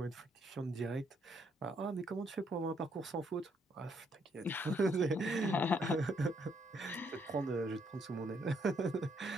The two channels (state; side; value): normal; both; correlation 0.72